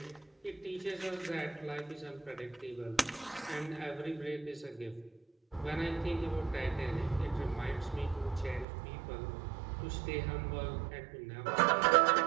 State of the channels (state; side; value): drops out; left; at 8.7 s